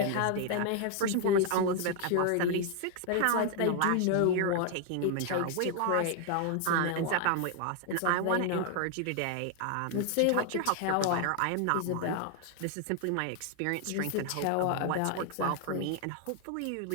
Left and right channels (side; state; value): both; different; correlation 0.00